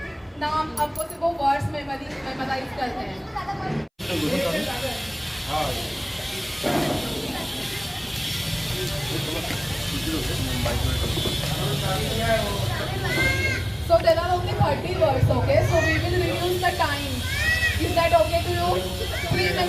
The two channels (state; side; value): identical; both; correlation 1.00